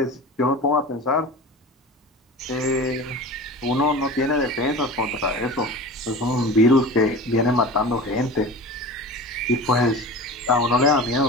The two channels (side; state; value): both; normal; correlation 0.34